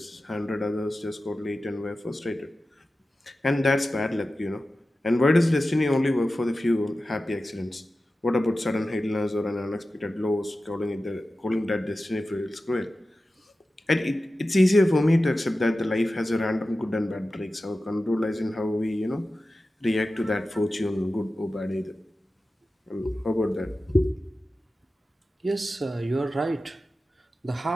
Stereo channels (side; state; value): both; normal; correlation 0.94